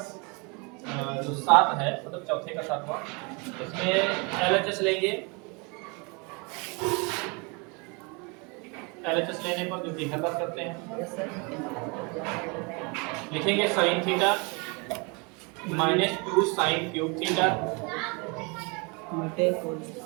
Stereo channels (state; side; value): quieter; left; 30.8 dB